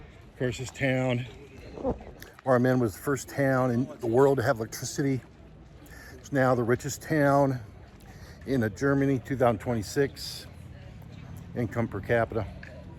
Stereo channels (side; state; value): both; identical; correlation 1.00